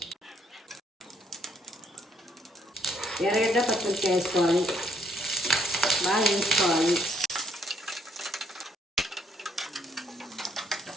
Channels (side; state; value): both; normal; correlation 0.70